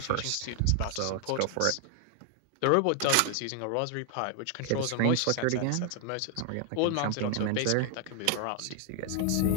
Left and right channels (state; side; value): different; both; correlation 0.00